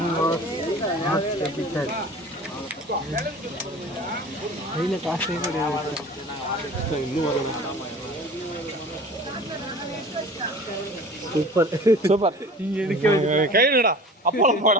கையில் காசே கிடையாது. இன்னும் வரணும். சூப்பர் இங்கே எடுக்க கைடா அப்பளம் போட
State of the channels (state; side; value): normal; both; correlation 0.41